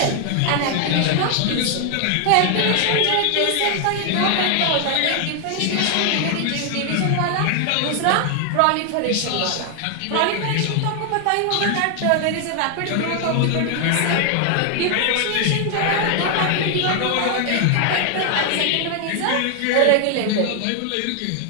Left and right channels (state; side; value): different; both; correlation 0.00